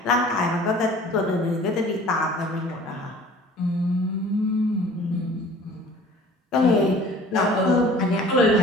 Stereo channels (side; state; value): both; normal; correlation 0.47